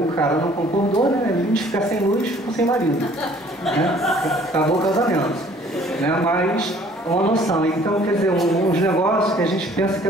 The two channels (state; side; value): normal; both; correlation 0.56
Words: cara não concordou, né? Ele de ficar sem luz, ficou sem marido. Né? Acabou o casamento. Né? Mas uma noção. Então, quer dizer, uns negócios que a gente pensa que